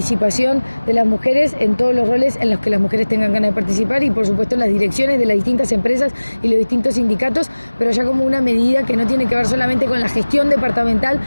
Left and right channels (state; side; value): inverted; both; correlation -1.00